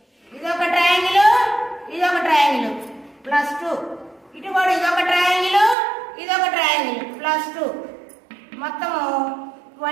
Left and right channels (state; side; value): drops out; left; at 5.8 s